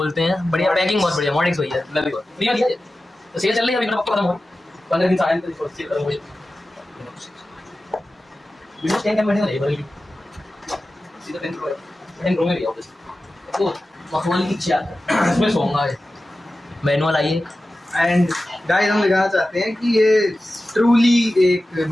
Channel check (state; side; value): normal; both; correlation 0.94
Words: हैं बढ़िया पैकिंग बहुत बढ़िया मॉडेक्स भैया लवी को दिया दिया तो सेल चल रही है अभी मेरा पक्का खत्म हो 15 दिन साल तो सेल खत्म हो जाए विंडोज 10 का बैठे नहीं बल्कि सीधा 10 प्रो में भी ऑफिस तो मखमल की चार इसमें सोऊंगा मैनुअल आइए एंड गाइस हम दिखाना चाहते हैं कि ये ट्रूली एक